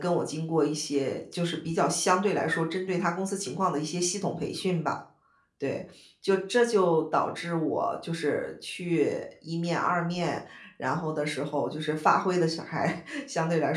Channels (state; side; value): identical; both; correlation 1.00